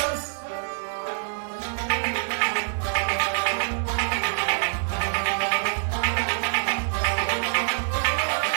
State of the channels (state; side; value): silent; left; digital silence